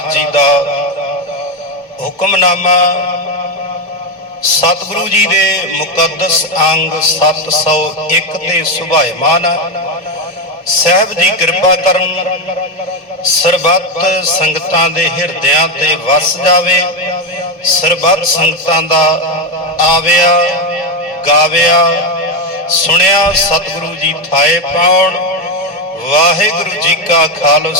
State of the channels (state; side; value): normal; both; correlation 0.10